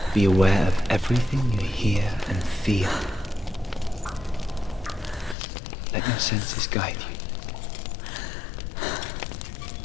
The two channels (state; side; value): drops out; right; at 5.4 s